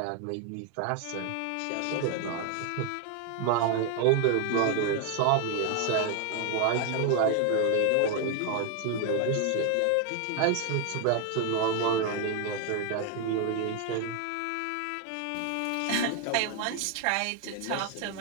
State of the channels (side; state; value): both; different; correlation 0.00